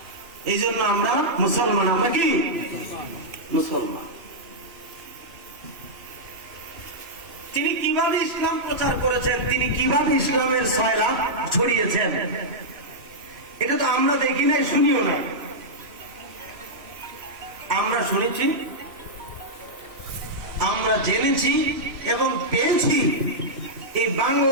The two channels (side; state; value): left; late; 2.7 ms